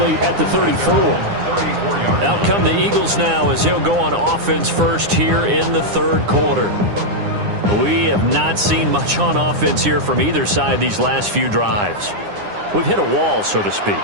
at the 34. Out come the Eagles now as he'll go on offense first here in the third quarter. We have not seen much on offense here from either side these last few drives. We've hit a wall, so to speak.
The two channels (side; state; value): left; late; 9.8 ms